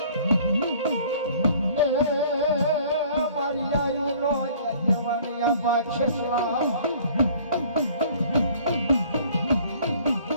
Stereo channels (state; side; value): inverted; both; correlation -0.53